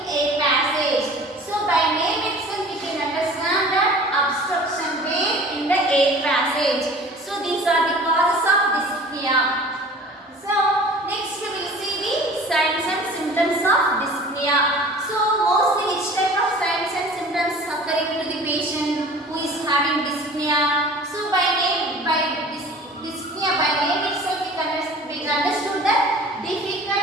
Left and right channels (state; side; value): normal; both; correlation 0.44